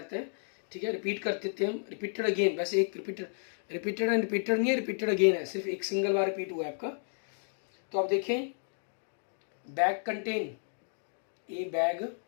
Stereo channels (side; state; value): right; silent; digital silence